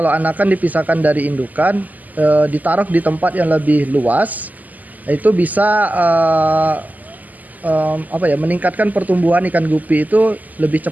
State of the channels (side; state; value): left; late; 0.080 ms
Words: anakan dipisahkan dari indukan, ditaruh di tempat yang lebih luas, itu bisa meningkatkan pertumbuhan ikan gupi itu lebih